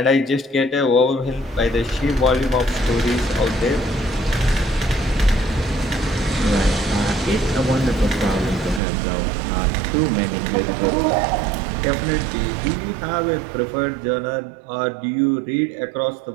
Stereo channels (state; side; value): drops out; left; at 8.8 s